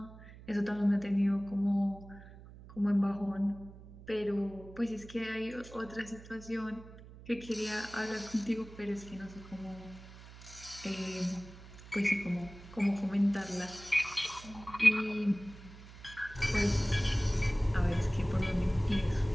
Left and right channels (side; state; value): right; noise; hum, 17 dB below the sound